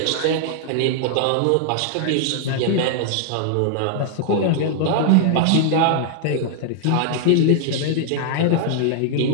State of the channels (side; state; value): both; different; correlation -0.01